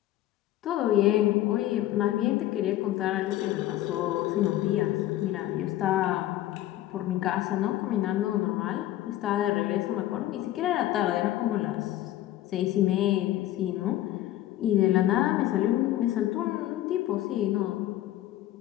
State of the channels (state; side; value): quieter; right; 14.1 dB